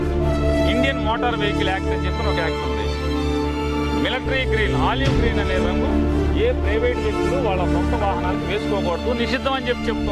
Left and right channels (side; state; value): both; identical; correlation 1.00